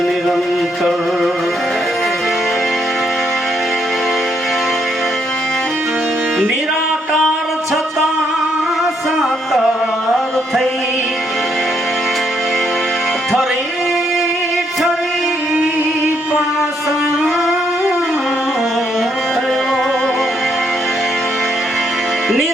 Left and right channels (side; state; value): both; normal; correlation 0.74